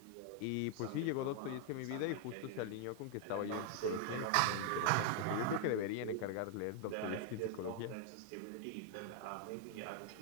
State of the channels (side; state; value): both; different; correlation 0.00